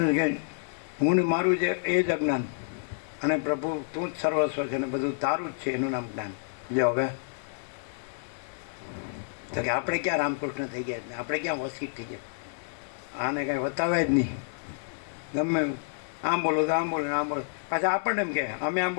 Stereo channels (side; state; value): right; silent; 59 dB below the other